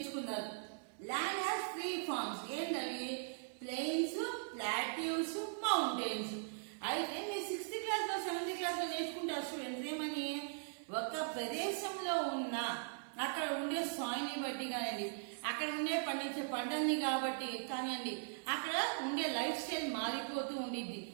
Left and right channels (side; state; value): left; silent; 51 dB below the other